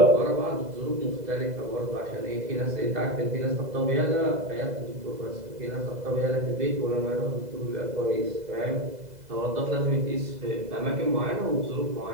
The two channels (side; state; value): left; late; 2.0 ms